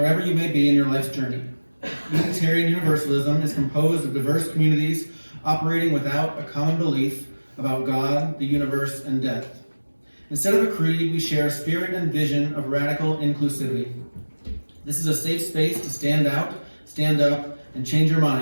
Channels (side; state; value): both; inverted; correlation -1.00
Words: you may be in your life's journey. Unitarian Universalism is composed of diverse communities operating without a common belief about God, the universe, and death. Instead of a creed, we share a spirit and vision of radical inclusivity. This is a safe space to stand out, stand up, and change your